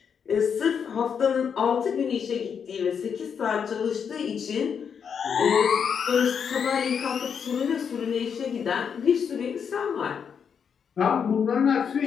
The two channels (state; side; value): quieter; right; 7.0 dB